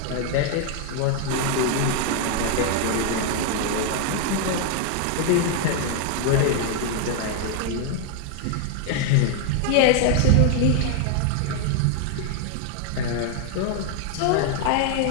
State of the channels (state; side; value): different; both; correlation 0.00